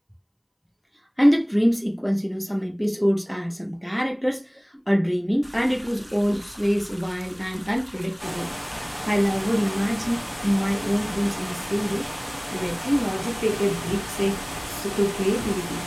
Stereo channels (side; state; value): both; identical; correlation 1.00